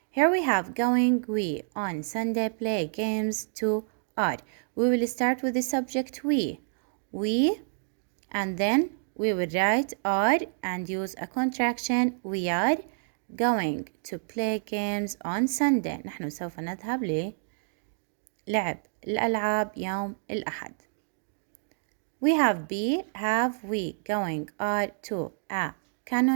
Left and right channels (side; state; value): left; silent; digital silence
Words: Here we have going, we, on Sunday, play games, to, are. We will start with the subject we, and then we will write are and use a contraction. We are going to play games on Sunday. نحن سوف نذهب للعب الألعاب يوم الأحد. We have be, have, we, going, are, to, a